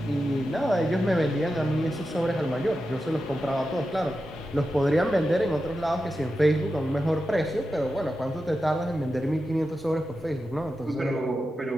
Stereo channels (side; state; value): both; normal; correlation 0.90